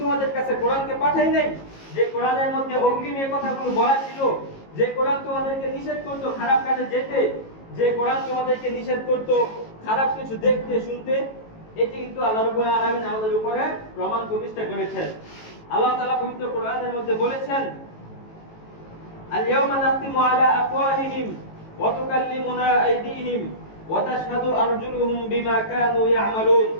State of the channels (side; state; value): right; late; 18 ms